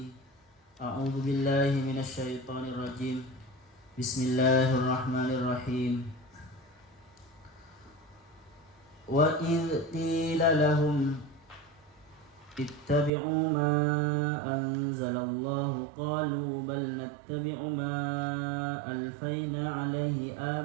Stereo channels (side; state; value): left; drops out; at 13.1 s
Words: أعوذ بالله من الشيطان الرجيم بسم الله الرحمن الرحيم وإذ قيل لهم اتبعوا ما أنزل الله قالوا بل نتبع ما ألفينا عليه